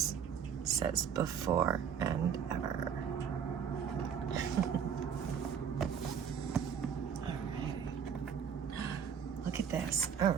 It says before and ever. Alright. Look at this.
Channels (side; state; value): left; quieter; 7.7 dB